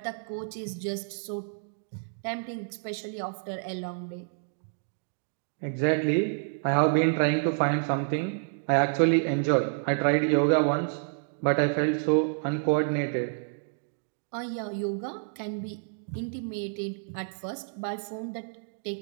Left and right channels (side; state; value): left; silent; digital silence